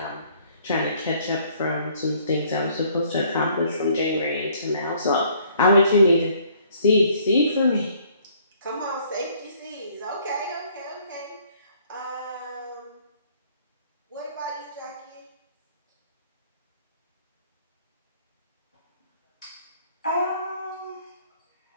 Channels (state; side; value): inverted; both; correlation -0.61